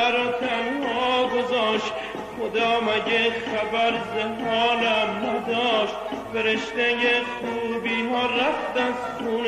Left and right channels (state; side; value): identical; both; correlation 1.00